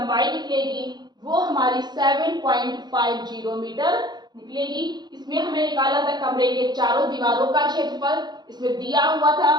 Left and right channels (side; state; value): left; late; 0.21 ms